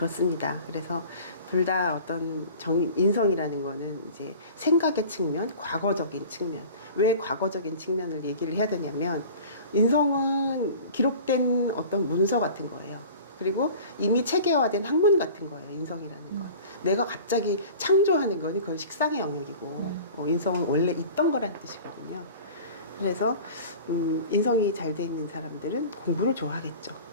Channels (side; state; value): both; inverted; correlation -0.41